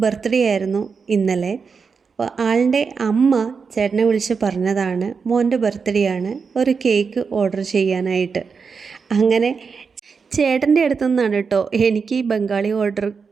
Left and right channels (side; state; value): left; quieter; 5.4 dB